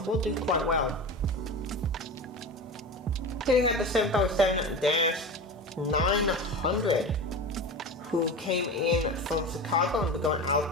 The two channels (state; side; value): normal; both; correlation 0.28